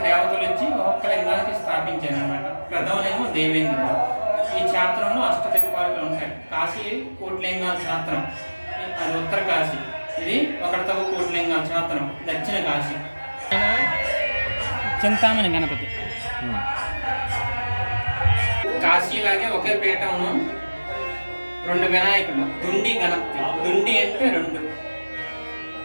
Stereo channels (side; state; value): both; inverted; correlation -1.00